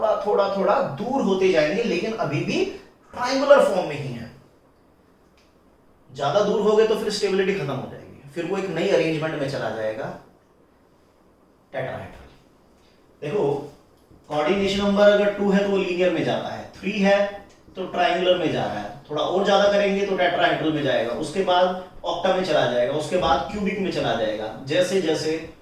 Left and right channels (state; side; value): identical; both; correlation 1.00